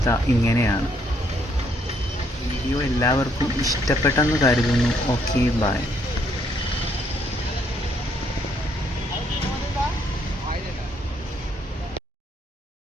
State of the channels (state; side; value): normal; both; correlation 0.70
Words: ഇങ്ങനെയാണ്. വീഡിയോ എല്ലാവർക്കും ഇഷ്ടപ്പെട്ടെന്ന് കരുതുന്നു. Okay, by.